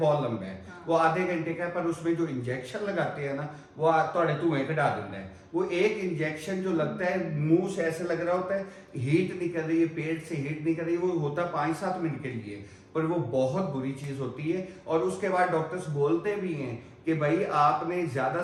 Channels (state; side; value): identical; both; correlation 1.00